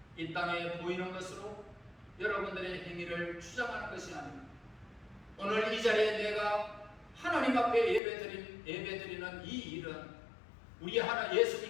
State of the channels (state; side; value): drops out; right; at 8.0 s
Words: 이 땅에 보이는 것으로 여러분들의 행위를 주장하는 것이 아닙니다. 오늘 이 자리에 내가 하나님 앞에 예배드리는 이 일은 우리